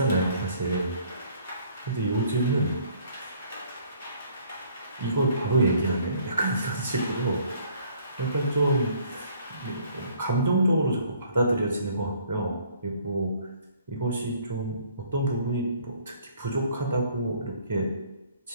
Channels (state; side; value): inverted; both; correlation -0.59